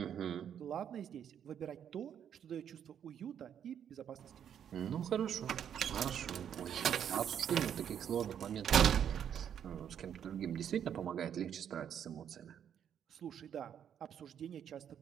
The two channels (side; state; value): left; quieter; 9.0 dB